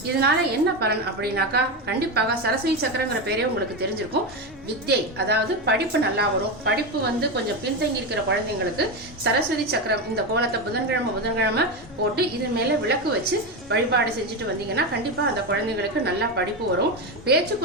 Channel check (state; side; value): normal; both; correlation 0.14